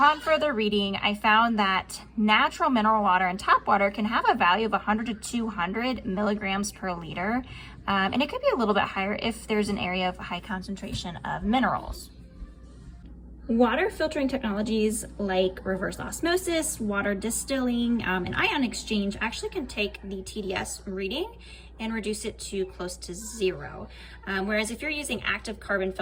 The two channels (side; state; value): both; identical; correlation 1.00